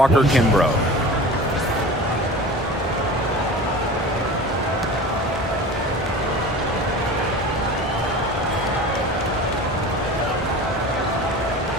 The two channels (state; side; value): normal; both; correlation 0.36